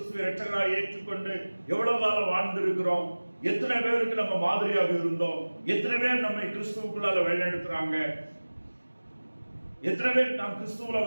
இரட்சகராய் ஏற்றுக்கொண்டு எவ்வளவு காலம் வாழ்ந்திருக்கிறோம்? எத்தனை பேருக்கு நம்ம மாதிரியாக இருந்தோம்? எத்தனை பேர் நம்மை கிறிஸ்துவுக்குள்ளால வழிநடத்துறாங்க? எத்தனை பேர் நாம் கிறிஸ்துவுல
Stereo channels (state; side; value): inverted; both; correlation -1.00